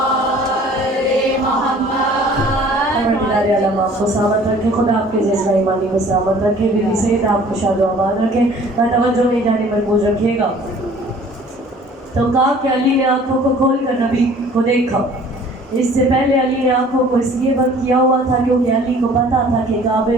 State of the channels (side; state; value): both; normal; correlation 0.51